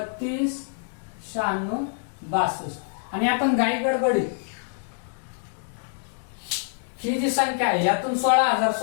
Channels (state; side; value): silent; right; 61 dB below the other